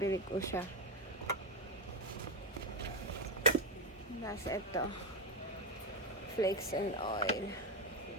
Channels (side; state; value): both; normal; correlation 0.10